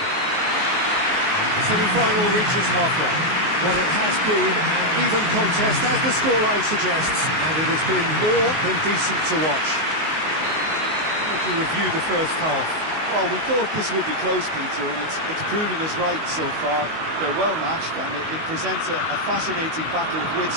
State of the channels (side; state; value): left; late; 19 ms